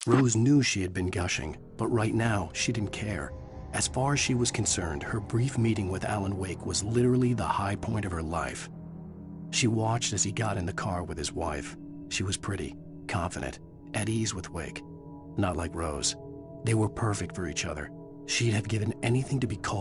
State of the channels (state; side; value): identical; both; correlation 1.00